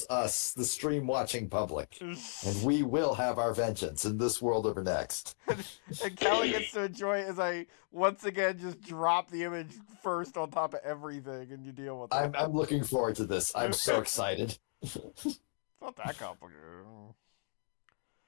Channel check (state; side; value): silent; right; digital silence